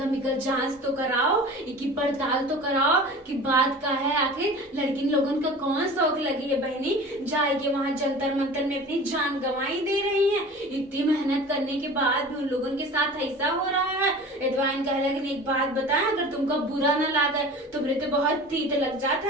इनका जांच तो कराओ, इनकी पड़ताल तो कराओ कि बात का है। आखिर लड़की लोगों का कौन शौक लगी है बहनी जाए के वहां जंतर मंतर में अपनी जान गंवाई दे रही है। इतनी मेहनत करने के बाद उन लोगों के साथ ऐसा हो रहा है। एडवाइन कह लगे, एक बात बताएं, अगर तुमको बुरा न लगे तो मेरे तो बहुत तीत लग जाता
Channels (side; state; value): both; normal; correlation 0.39